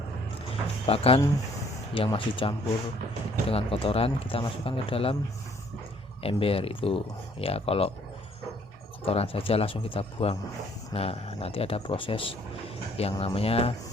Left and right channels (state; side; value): normal; both; correlation 0.62